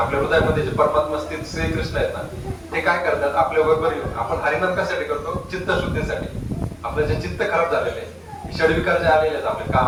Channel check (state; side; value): identical; both; correlation 1.00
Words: हृदयामध्ये जे परमात्मा स्थित श्रीकृष्ण आहेत ना, ते काय करतात आपल्या बरोबर येऊन. आपण हरिनाम कशासाठी करतो? चित्तशुद्धीसाठी. आपलं जे चित्त खराब झालेलं आहे, षडविकार जे आलेले आहेत आपले,